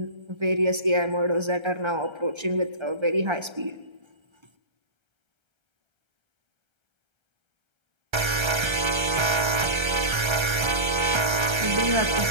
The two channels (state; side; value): late; left; 1.3 ms